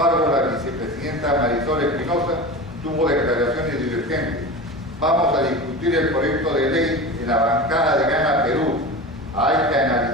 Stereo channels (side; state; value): both; normal; correlation 0.30